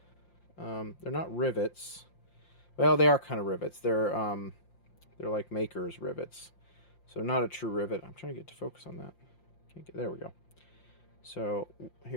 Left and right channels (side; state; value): right; late; 5.7 ms